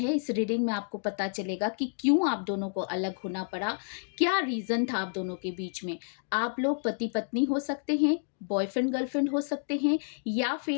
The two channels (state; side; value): silent; right; digital silence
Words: इस रीडिंग में आपको पता चलेगा कि क्यों आप दोनों को अलग होना पड़ा, क्या रीज़न था आप दोनों के बीच में। आप लोग पति-पत्नी हो सकते हैं, बॉयफ्रेंड-गर्लफ्रेंड हो सकते हैं या